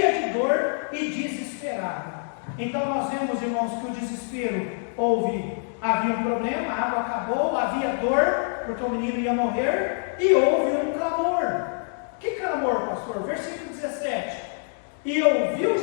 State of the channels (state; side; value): silent; right; 61 dB below the other